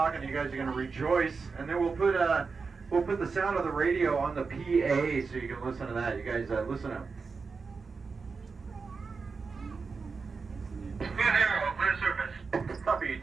You guys are going to rejoice, and then we'll put the sound of the radio on the PA so you can listen to that. You guys listen up. 2-0, clear surface. Copy,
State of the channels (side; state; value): left; quieter; 4.8 dB